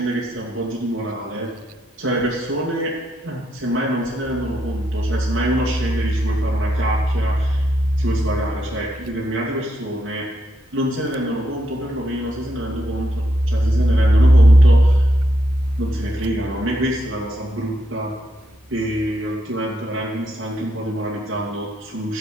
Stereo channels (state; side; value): normal; both; correlation 0.79